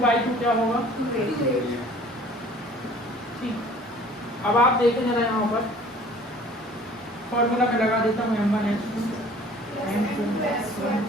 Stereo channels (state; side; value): normal; both; correlation 0.50